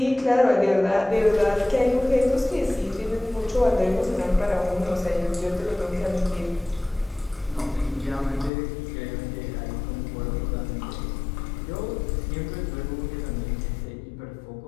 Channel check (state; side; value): drops out; right; at 8.5 s